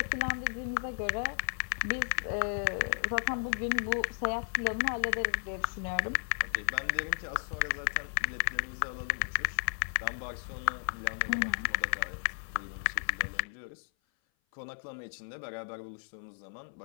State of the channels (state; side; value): silent; right; 55 dB below the other